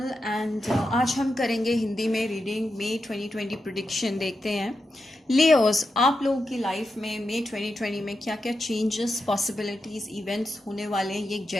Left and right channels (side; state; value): both; normal; correlation 0.88